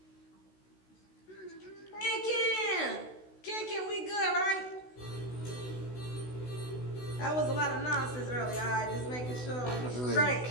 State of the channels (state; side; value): late; right; 16 ms